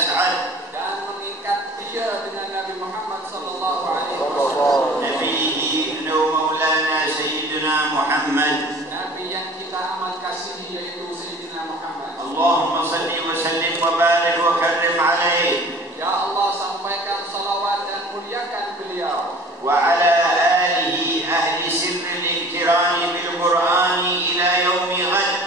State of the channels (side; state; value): both; normal; correlation 0.46